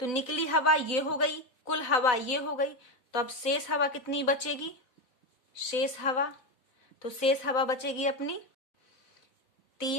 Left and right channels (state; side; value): late; right; 4.0 ms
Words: निकली हवा ये हो गई, कुल हवा ये हो गई। तो अब शेष हवा कितनी बचेगी? शेष हवा, तो शेष हवा बचेगी अपनी